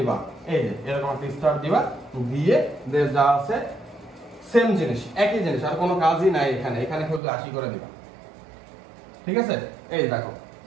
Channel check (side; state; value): left; drops out; at 7.2 s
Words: এই যে এরকম একটা স্টার দিবা, দিয়ে যা আছে সেম জিনিস, একই জিনিস, আর কোনো কাজই নাই এখানে শুধু 80 করে দিবা, ঠিক আছে? এই দেখো